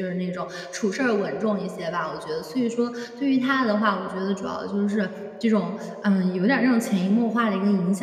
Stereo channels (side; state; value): both; identical; correlation 1.00